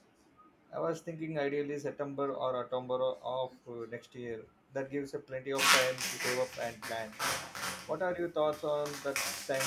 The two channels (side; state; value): both; identical; correlation 1.00